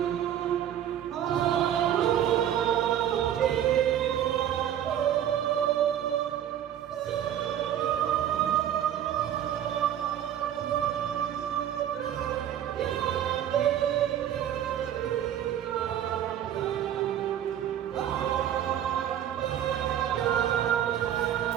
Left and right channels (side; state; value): left; quieter; 10.6 dB